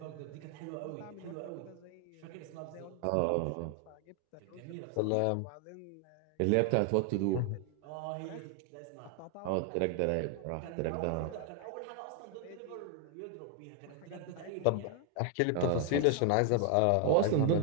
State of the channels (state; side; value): different; both; correlation 0.00